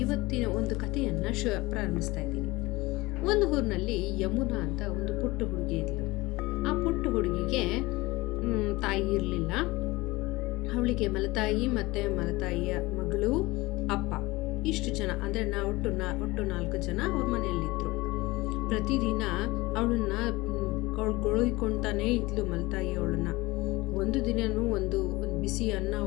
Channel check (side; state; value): right; quieter; 21.4 dB